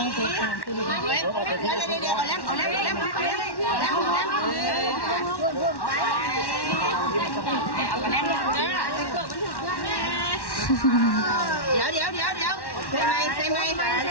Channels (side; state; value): right; late; 1.1 ms